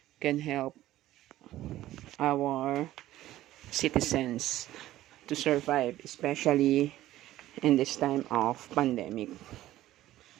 can help our citizens to survive, especially in this time of pandemic.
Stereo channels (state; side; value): quieter; left; 14.7 dB